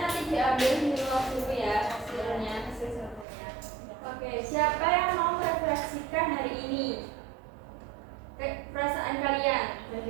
nanti diambil di luar dulu ya hasilnya. Oke, siapa yang mau merefleksikan hari ini? Perasaan kalian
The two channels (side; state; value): left; drops out; at 3.2 s